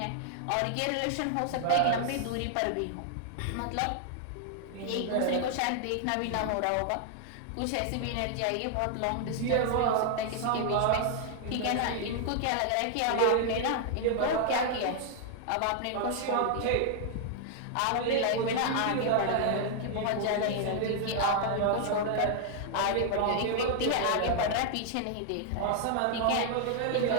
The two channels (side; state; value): both; different; correlation 0.00